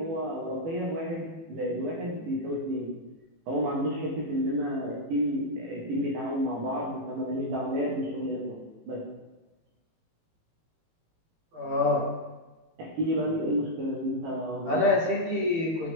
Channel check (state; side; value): late; left; 18 ms